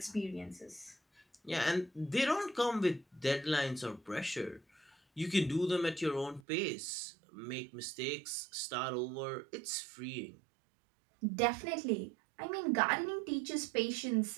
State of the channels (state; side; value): drops out; left; at 6.4 s